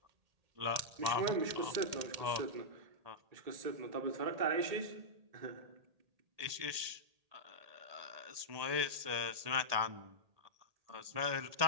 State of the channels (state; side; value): late; left; 1.8 ms